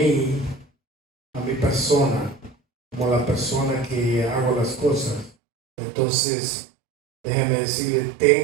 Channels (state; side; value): drops out; left; at 5.3 s